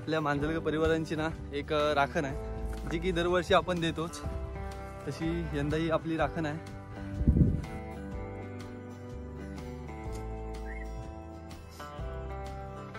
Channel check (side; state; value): both; identical; correlation 1.00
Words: मांजरकर परिवारांची ना एक राखण आहे, जी की दरवर्षी आपण देतोच. तशी यंदाही आपली राखण आहे.